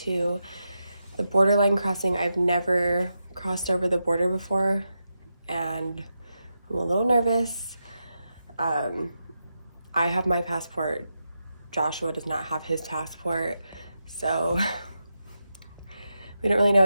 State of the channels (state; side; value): inverted; both; correlation -0.87